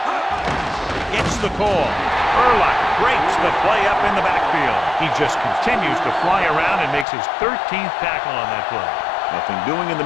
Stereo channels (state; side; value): drops out; right; at 7.1 s